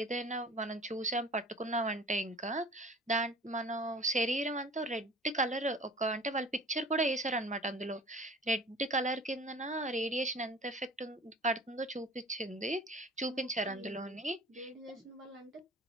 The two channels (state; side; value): normal; both; correlation 0.44